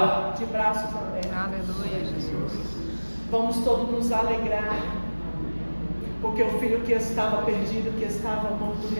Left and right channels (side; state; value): both; inverted; correlation -1.00